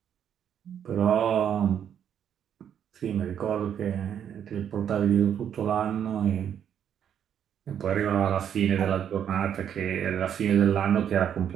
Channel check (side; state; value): left; quieter; 9.0 dB